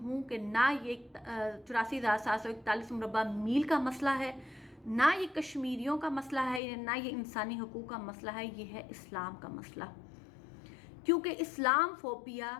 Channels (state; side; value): drops out; right; at 6.6 s